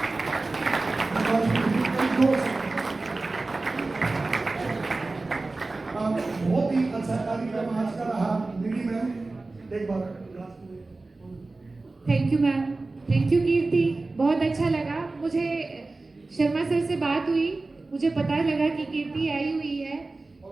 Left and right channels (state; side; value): quieter; left; 3.4 dB